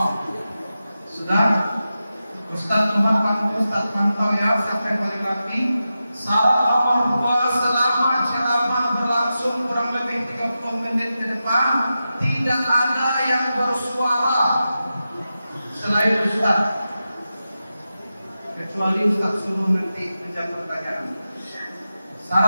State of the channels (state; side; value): inverted; both; correlation -0.91